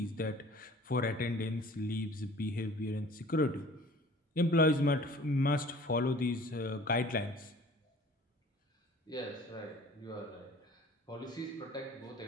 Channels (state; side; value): normal; both; correlation 0.48